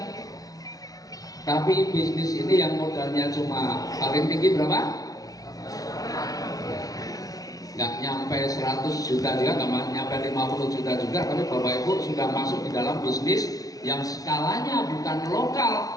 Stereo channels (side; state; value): right; late; 0.17 ms